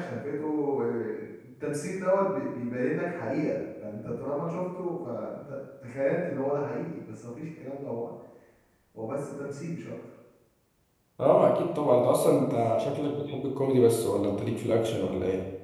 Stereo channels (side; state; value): both; identical; correlation 1.00